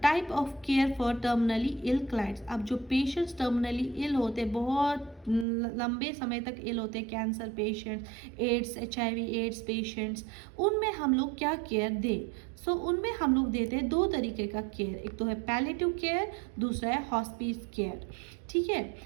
type of care for terminally ill clients. अब जो पेशेंट्स टर्मिनली इल होते हैं, बहुत लंबे समय तक इल होते हैं, cancer patients, AIDS, HIV AIDS patients, उनमें हम लोग क्या केयर दें. सो उनमें हम लोग देते हैं दो तरीके का केयर, एक तो है पैलिएटिव केयर, दूसरा है हॉस्पिस केयर. ठीक है,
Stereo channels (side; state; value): left; drops out; at 5.5 s